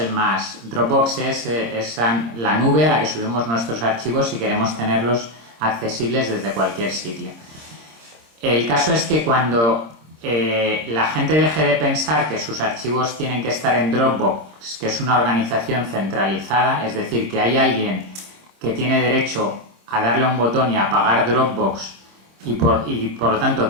más... Dropbox es la nube a la que subimos nuestros archivos si queremos tenerlos accesibles desde cualquier sitio. El caso es que cuando la gente deje de pensar que sus archivos tienen que estar en Dropbox, que es una organización centralizada, es decir, que hay alguien que tiene derecho a darle a un botón y apagar Dropbox y por lo tanto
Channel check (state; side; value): late; left; 26 ms